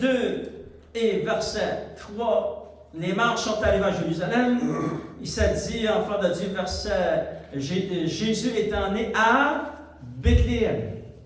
et verset 3, les marches sont arrivées à Jérusalem. Il s'est dit, enfant de Dieu, verset, Jésus étant né à Bethléem.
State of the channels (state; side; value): identical; both; correlation 1.00